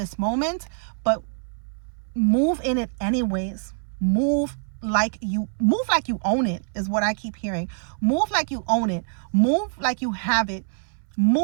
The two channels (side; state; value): left; silent; 62 dB below the other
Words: moment, but move in it anyways. Move like you own it is what I keep hearing. Move like you own it. Move like you have it.